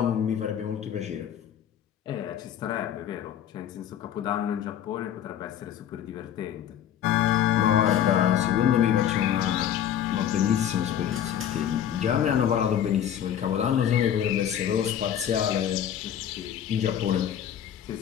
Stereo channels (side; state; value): right; quieter; 9.9 dB